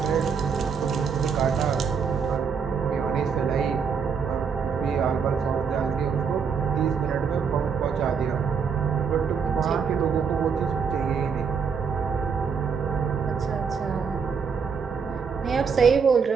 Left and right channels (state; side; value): quieter; left; 6.2 dB